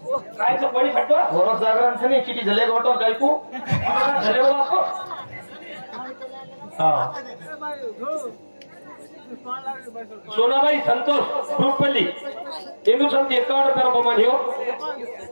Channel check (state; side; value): inverted; both; correlation -1.00